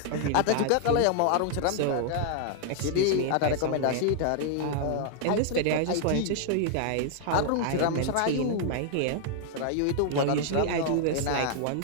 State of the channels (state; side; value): different; both; correlation 0.00